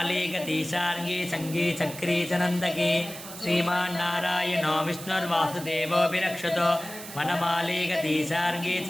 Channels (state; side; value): noise; right; hiss, 13 dB below the sound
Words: सङ्गी चक्री च नन्दकी श्रीमान्नारायणो विष्णुर्वासुदेवोऽभिरक्षतो वनमालीगतीशार्गी